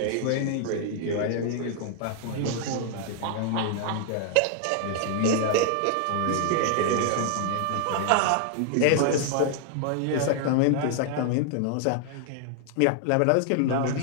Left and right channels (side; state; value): both; different; correlation 0.00